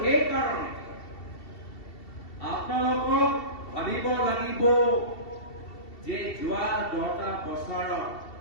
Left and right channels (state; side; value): late; right; 2.7 ms